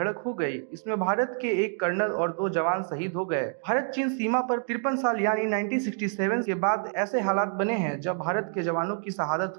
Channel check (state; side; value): silent; left; 55 dB below the other